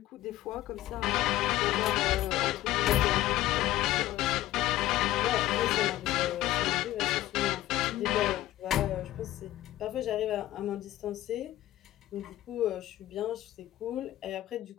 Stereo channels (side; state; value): right; quieter; 15.0 dB